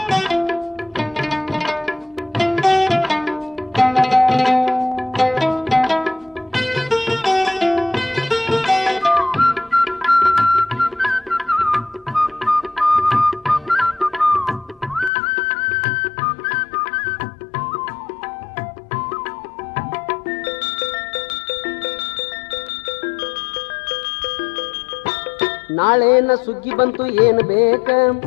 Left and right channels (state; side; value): drops out; right; at 15.1 s